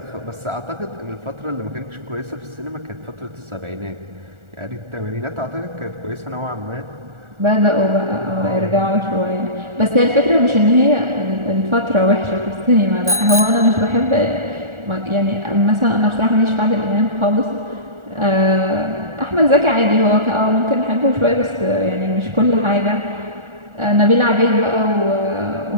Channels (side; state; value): left; late; 1.4 ms